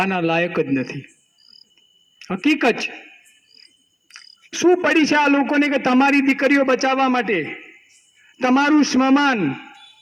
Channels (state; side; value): identical; both; correlation 1.00